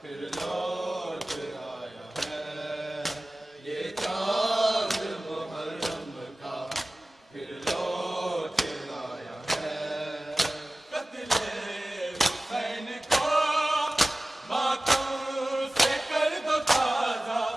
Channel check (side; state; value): both; normal; correlation 0.97